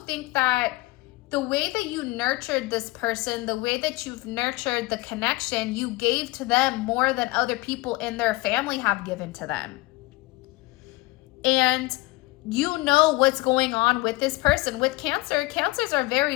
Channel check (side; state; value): right; quieter; 21.0 dB